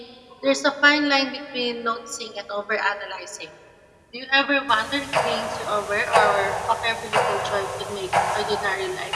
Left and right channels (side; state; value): both; identical; correlation 1.00